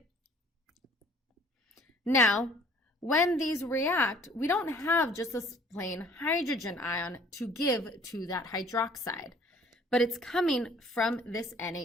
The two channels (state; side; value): normal; both; correlation 0.55